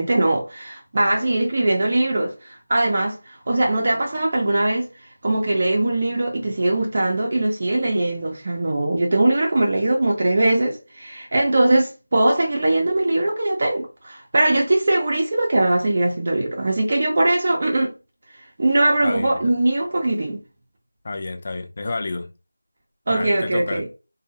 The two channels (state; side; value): inverted; both; correlation -0.97